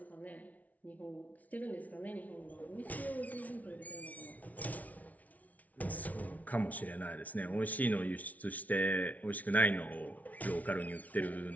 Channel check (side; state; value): right; late; 0.072 ms